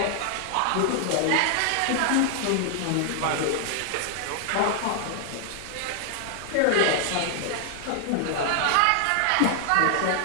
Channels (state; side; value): different; both; correlation 0.00